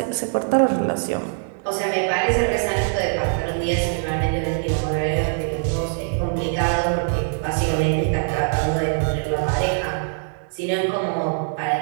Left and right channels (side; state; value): left; silent; 61 dB below the other